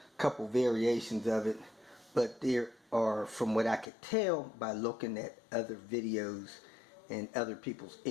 couple variations of it, but there are, from what I could tell by looking at other videos and other people's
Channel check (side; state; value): right; drops out; at 3.9 s